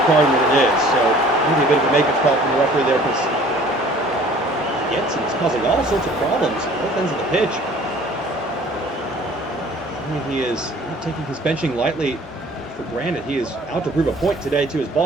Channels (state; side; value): normal; both; correlation 0.51